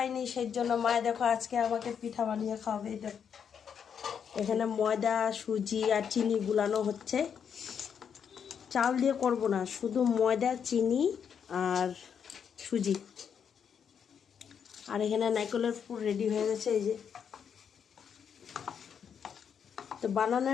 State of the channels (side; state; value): right; quieter; 7.5 dB